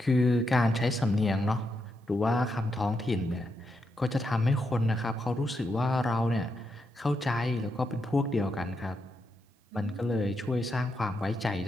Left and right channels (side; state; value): both; normal; correlation 0.83